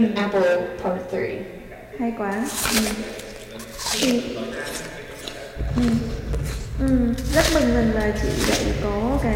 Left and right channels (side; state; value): both; identical; correlation 1.00